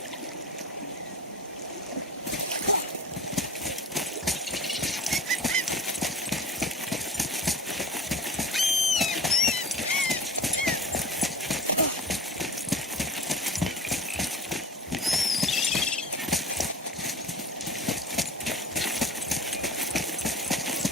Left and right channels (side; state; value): both; normal; correlation 0.38